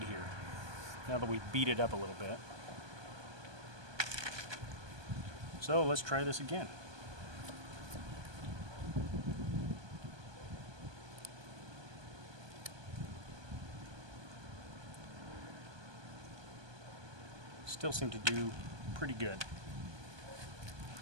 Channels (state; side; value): late; left; 1.2 ms